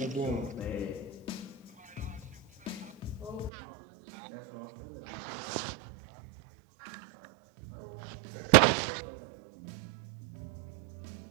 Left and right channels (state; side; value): drops out; left; at 3.5 s